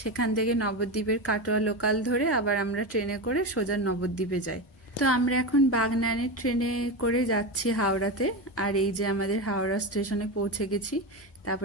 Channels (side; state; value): both; normal; correlation 0.18